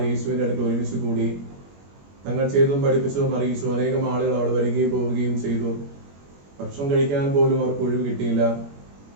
യേശുവിന്റെ അടുത്ത് ഒരുമിച്ച് കൂടി തങ്ങൾ ചെയ്തതും പഠിപ്പിച്ചതും അറിയിച്ചു. അനേകം ആളുകൾ അവിടെ വരികയും പോവുകയും ചെയ്തു. ഭക്ഷണം കഴിക്കാൻ പോലും അവർക്ക് ഒഴിവ് കിട്ടിയില്ല.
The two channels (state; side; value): late; left; 21 ms